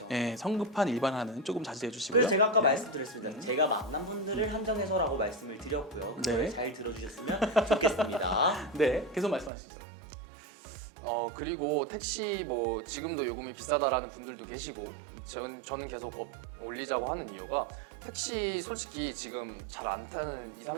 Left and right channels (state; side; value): drops out; left; at 9.5 s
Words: 예, 성급한 일반화는 조금 자제해 주시고요. 그래서 제가 아까 네. 말씀드렸습니다. 제가 만난 분들을 한정해서라고 말씀을 드렸고요. 그걸 네. 잘 들어주셨으면 좋겠습니다. 네, 계속 말씀하시죠. 그리고 택시 뭐 지금도 요금이 비싸다라는 분들도 계시고 저는 계속 올리자고 하는 이유가 택시 솔직히 지금 잘 안 타는 20,